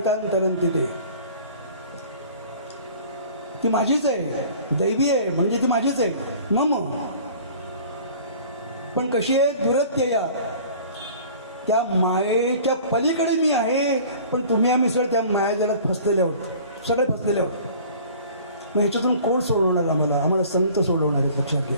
ते. ती माझीच आहे, दैवी आहे म्हणजे ती माझीच आहे मम. पण कशी आहे? दुरत्यया, त्या मायेच्या पलीकडे मी आहे. पण तुम्ही आम्ही सगळे त्या मायाजालात फसलेले आहोत, सगळे फसलेले आहोत. मग ह्याच्यातून कोण सोडवणार आम्हाला? आम्हाला संत सोडवणार आहेत, लक्षात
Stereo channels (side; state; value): both; inverted; correlation -0.47